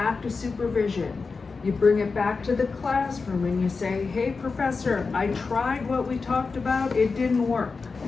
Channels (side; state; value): right; quieter; 4.5 dB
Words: to supervision. You bring it back to the classroom and you say, hey, professor, I tried what we talked about, it didn't work.